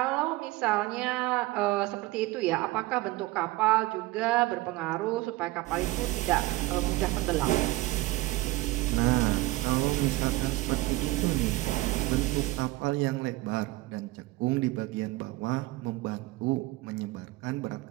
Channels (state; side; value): quieter; left; 19.3 dB